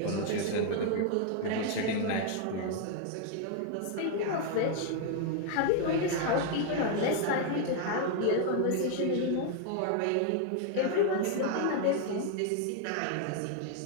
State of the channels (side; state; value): both; different; correlation 0.00